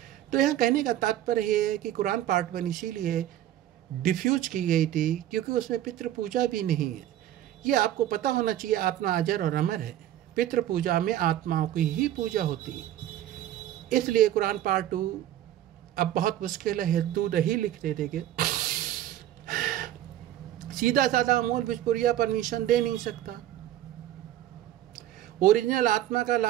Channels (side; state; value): left; quieter; 12.6 dB